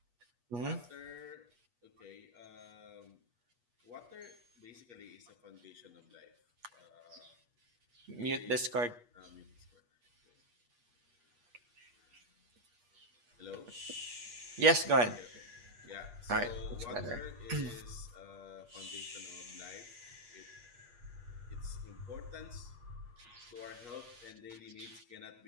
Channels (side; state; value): left; late; 8.4 ms